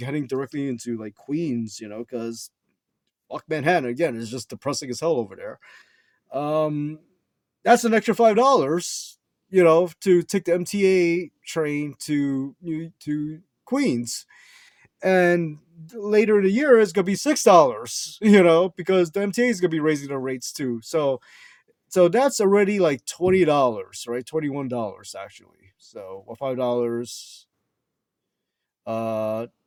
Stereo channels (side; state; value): both; identical; correlation 1.00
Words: directly into like Queens, because fuck Manhattan again. It's just depressing as hell over there. Um, that's an extra $5, to take the MTA train to Queens. And later in the year, it's gonna be $6, because the MTA is gonna be raising their rates too. So that's already like $20, right? $21 actually. So or $5. No,